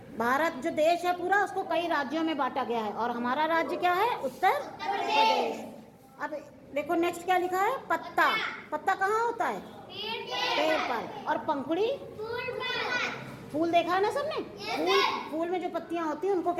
भारत जो देश है पूरा उसको कई राज्यों में बांटा गया है और हमारा राज्य क्या है? उत्तर प्रदेश। अब देखो नेक्स्ट क्या लिखा है? पत्ता। पत्ता कहाँ होता है? पेड़ पर। और पंखुड़ी? फूल देखा है ना सबने? फूल में जो पत्तियां होती हैं उनको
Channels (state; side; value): identical; both; correlation 1.00